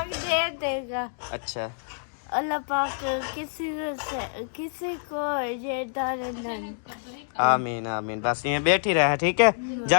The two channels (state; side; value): silent; right; digital silence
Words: दे देगा। अच्छा, अल्लाह पाक किसी को ये दाने नहीं। आमीन आमीन। बस ये बैठी रहे, ठीक है?